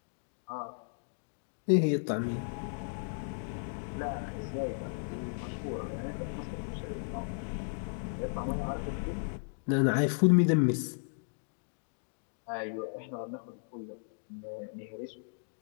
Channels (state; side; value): silent; right; digital silence